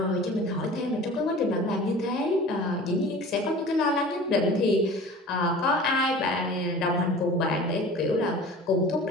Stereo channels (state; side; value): normal; both; correlation 0.41